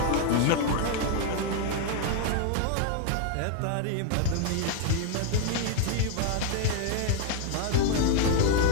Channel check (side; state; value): both; different; correlation 0.00